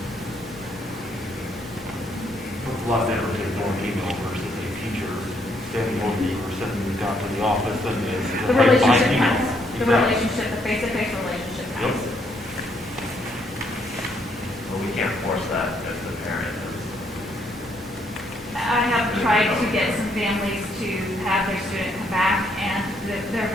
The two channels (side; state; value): both; normal; correlation 0.72